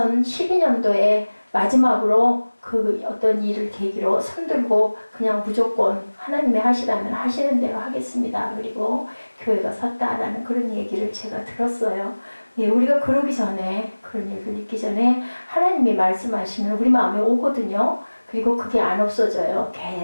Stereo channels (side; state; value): both; inverted; correlation -1.00